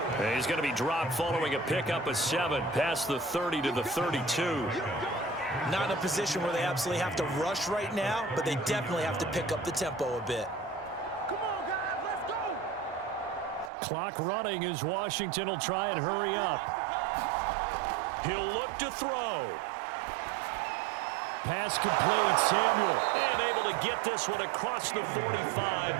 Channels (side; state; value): left; drops out; at 13.7 s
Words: He's going to be dropped following a pickup of 7 past the 30 to the 32. Not in a position where they absolutely have to rush right now, but they definitely have to pick up the tempo a bit. Come on, guys, let's go. Clock running as Washington will try and hurry up. He'll look to throw. Pass complete, Samuel. And able to get this one across the 45